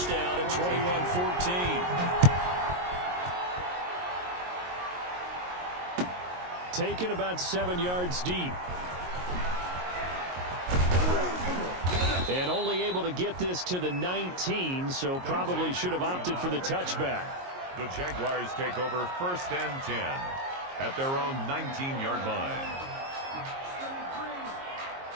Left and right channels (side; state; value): left; late; 22 ms